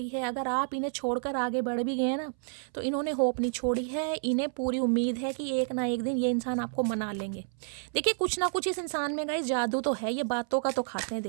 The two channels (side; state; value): left; silent; 58 dB below the other